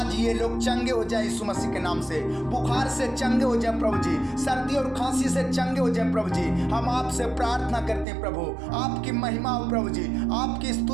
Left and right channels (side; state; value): left; drops out; at 8.1 s